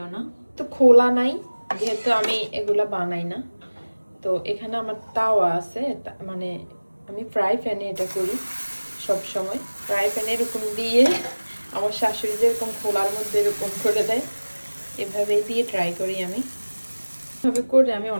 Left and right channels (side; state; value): both; inverted; correlation -1.00